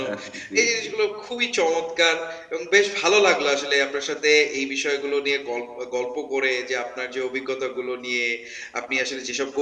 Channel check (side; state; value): both; identical; correlation 1.00